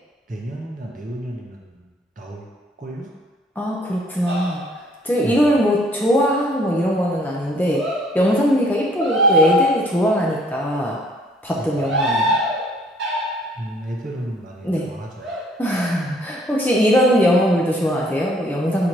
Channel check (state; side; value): normal; both; correlation 0.61